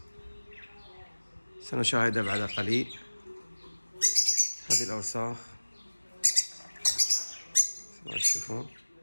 سنشاهدها بعد قليل. هذه الأوساخ ما تشوفون.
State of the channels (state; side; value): inverted; both; correlation -1.00